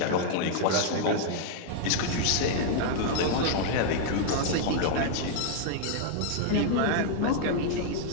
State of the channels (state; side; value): different; both; correlation 0.00